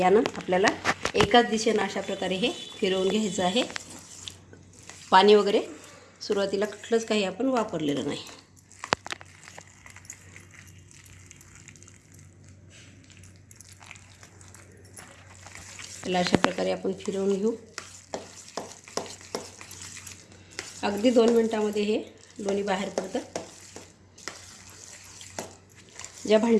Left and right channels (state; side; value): identical; both; correlation 1.00